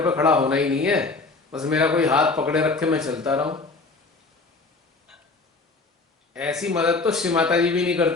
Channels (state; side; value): quieter; right; 3.8 dB